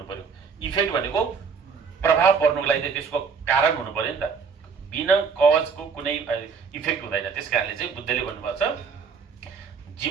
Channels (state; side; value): quieter; left; 5.7 dB